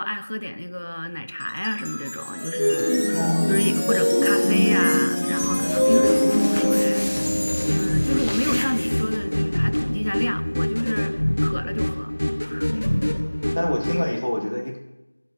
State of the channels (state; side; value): inverted; both; correlation -1.00